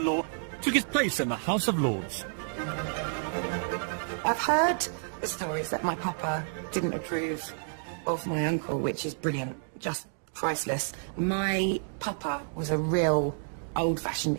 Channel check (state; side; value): silent; left; digital silence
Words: took his place in the House of Lords. I've heard the stories that my papa didn't approve of my uncle, which is brilliant, just priceless. My papa was a real